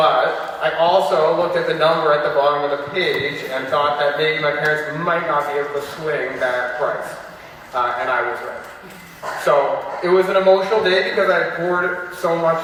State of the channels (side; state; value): both; identical; correlation 1.00